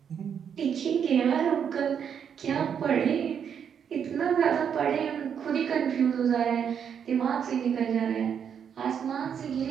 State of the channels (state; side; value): quieter; left; 7.8 dB